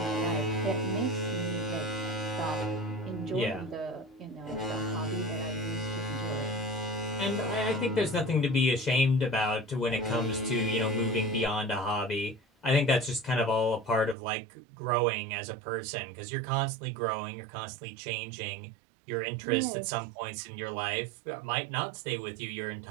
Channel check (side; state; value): left; drops out; at 14.2 s